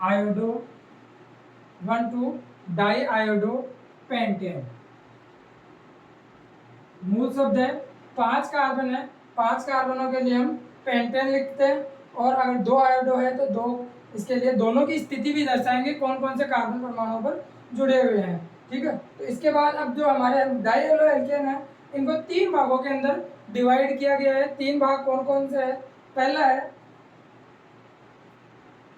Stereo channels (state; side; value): identical; both; correlation 1.00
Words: iodo, 1 2 di iodo pentane. मूल शब्द है, 5 कार्बन है, 5 कार्बनों के लिए हम पेंटेन लिखते हैं। और अगर 2 आयोडो है तो 2, इसके लिए दोनों की स्थिति भी दर्शाएंगे, कौन कौन से कार्बन परमाणुओं पर जुड़े हुए हैं। ठीक है, तो इसके बाद अब जो हमारे डाईहेलो एल्केन है, इनको 3 भागों के अंदर डिवाइड किया गया है। 3 भाग कौन कौन से है? पहला है